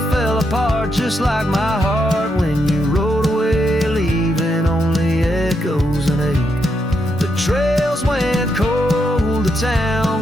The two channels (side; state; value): both; normal; correlation 0.80